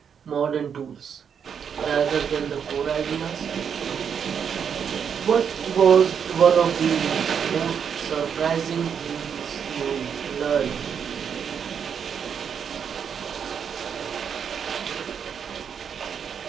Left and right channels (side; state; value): left; quieter; 7.4 dB